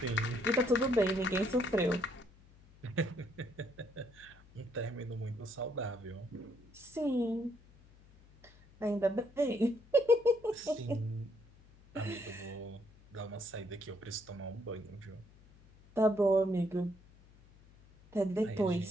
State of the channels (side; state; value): left; noise; hum, 25 dB below the sound